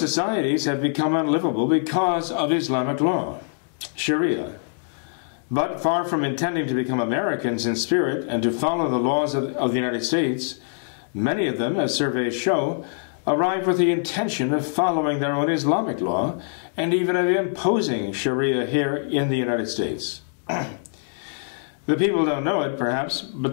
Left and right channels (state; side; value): silent; right; 63 dB below the other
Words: have become unlivable because of Islamic law, Sharia. But far from intending to become Americans in spirit and to follow the laws of the United States, many of them, as surveys show, arrive with the intention of following their own Islamic law and even of imposing Sharia here in the United States. The people don't know it, perhaps,